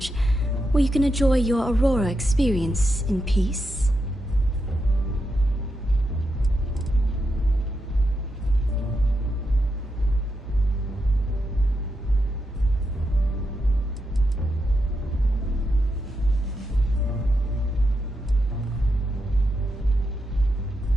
where you can enjoy your Aurora experience in peace.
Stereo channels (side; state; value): both; normal; correlation 0.85